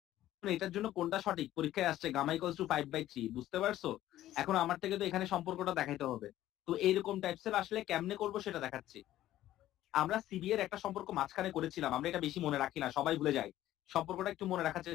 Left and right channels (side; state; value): right; quieter; 13.8 dB